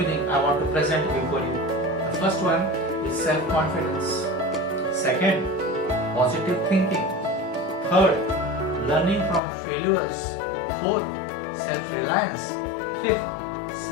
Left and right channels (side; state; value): right; drops out; at 9.4 s